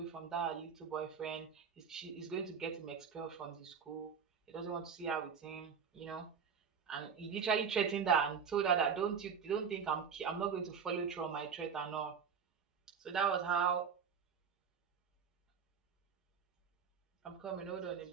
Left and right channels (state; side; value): quieter; left; 6.5 dB